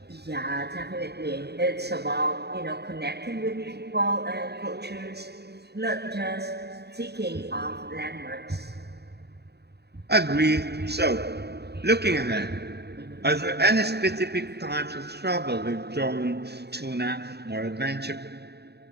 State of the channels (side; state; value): left; late; 0.48 ms